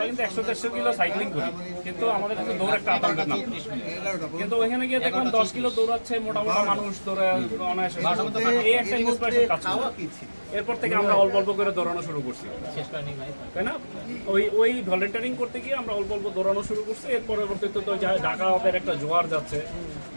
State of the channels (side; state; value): both; inverted; correlation -1.00